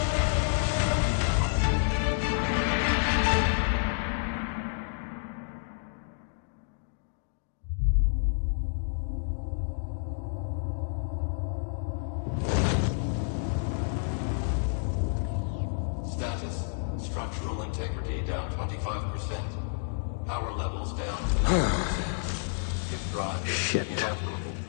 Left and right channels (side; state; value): right; silent; digital silence